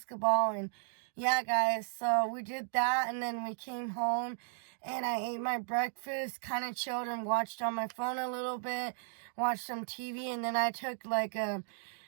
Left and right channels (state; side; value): silent; left; digital silence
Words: and yeah, guys. So we did that and then we came home and I ate my breakfast, kind of chilled and watched on my phone a little bit, watched some TV, and then I took like a